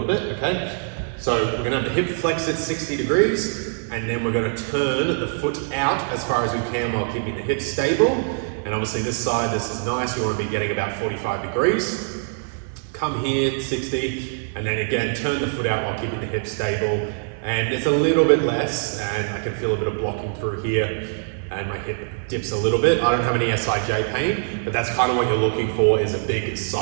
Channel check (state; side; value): silent; left; digital silence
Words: bit, okay? So we're going to have the hip flex at 60 degrees, and then we're going to turn the foot out as far as we can while keeping the hip stable. And obviously this side, this is nice, we want to be getting about 45 degrees. Come here, 60, and then again, turn the foot out while keeping the hip stable. And it's a little bit less, and I can feel a bit of blocking through here, and my hip dips a little bit. I don't have any SIJ pain, but that's kind of what you're looking for, is a big